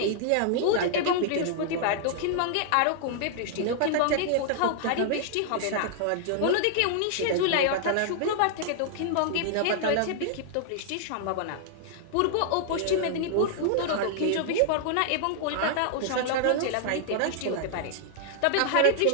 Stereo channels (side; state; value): both; different; correlation -0.01